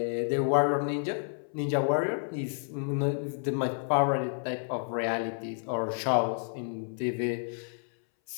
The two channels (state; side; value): silent; right; 58 dB below the other